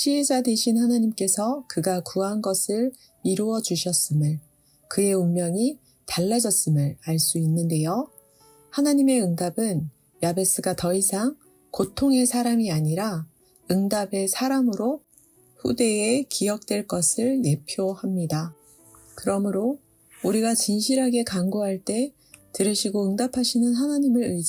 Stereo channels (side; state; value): both; identical; correlation 1.00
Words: 되신 하나님께서 그가 구한 것을 이루어 주셨음을, 그의 운명이 달라졌음을 알 수 있는데요. 하나님의 응답은 야베스가 더 이상 고통의 사람이 아니라 응답의 사람으로 후대에 기억될 것을 예표합니다. 그러므로 우리가 진실하게 간구할 때 들으시고 응답하시는 하나님을